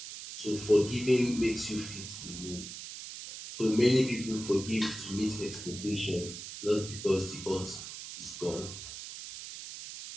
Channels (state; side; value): noise; right; hiss, 10 dB below the sound